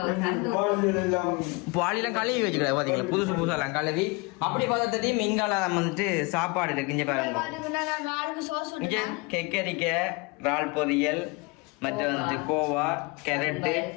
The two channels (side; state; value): right; quieter; 27.6 dB